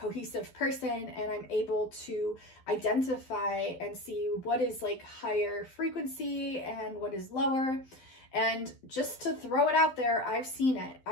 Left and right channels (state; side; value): late; right; 12 ms